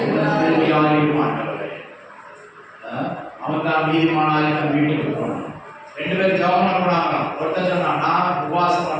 ஆண்டவரே. அவன் தான் நீதிமானாய் தன் வீட்டுக்கு போனான். 2 பேரும் ஜெபம் பண்ணாங்க. ஒருத்தர் சொன்னா நான் உபவாசம்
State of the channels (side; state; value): both; identical; correlation 1.00